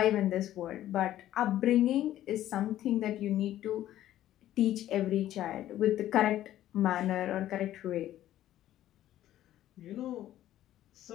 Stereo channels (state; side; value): quieter; right; 13.0 dB